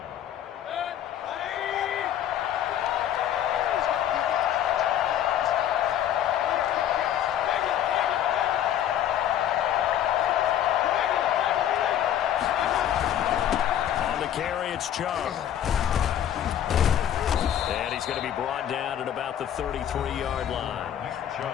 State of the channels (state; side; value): quieter; right; 10.6 dB